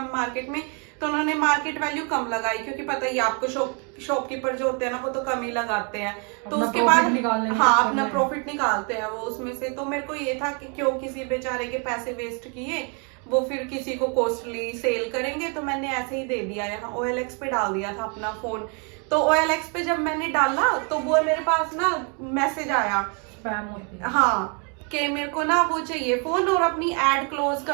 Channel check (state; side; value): quieter; left; 36.5 dB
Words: मार्केट में, तो उन्होंने मार्केट वैल्यू कम लगाई क्योंकि पता ही आपको शॉपकीपर जो होते हैं ना वो तो कम ही लगाते हैं. तो उसके बाद हाँ अपना प्रॉफिट निकालते हैं वो उसमें से. तो मेरे को ये था कि क्यों किसी बेचारे के पैसे वेस्ट किए, वो फिर किसी को कॉस्टली सेल करेंगे. तो मैंने ऐसे ही दे दिया, यहाँ OLX पे डाल दिया था अपना फोन. तो OLX पे जब मैंने डाला तो वो मेरे पास ना मैसेज आया हाँ कि मेरे को ना वो चाहिए फोन और अपनी एड क्लोज